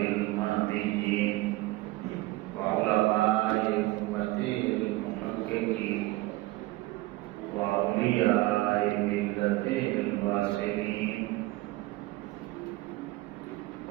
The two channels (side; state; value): left; quieter; 19.2 dB